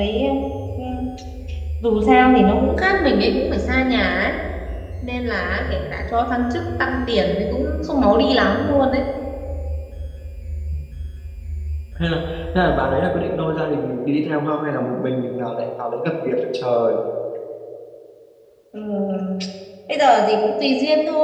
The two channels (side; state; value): both; identical; correlation 1.00